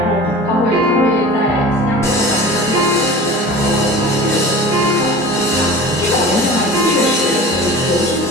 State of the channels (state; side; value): normal; both; correlation 0.37